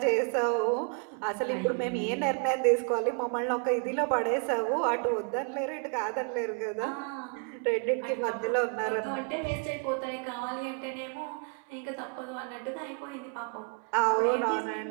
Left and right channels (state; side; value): quieter; left; 38.4 dB